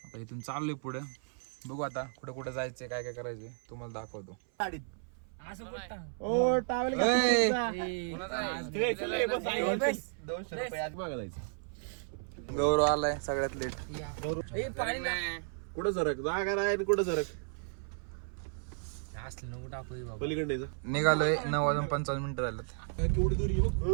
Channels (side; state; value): left; silent; 55 dB below the other